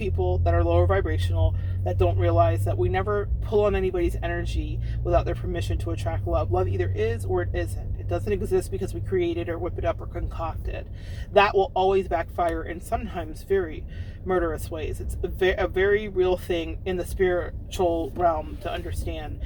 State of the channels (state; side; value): identical; both; correlation 1.00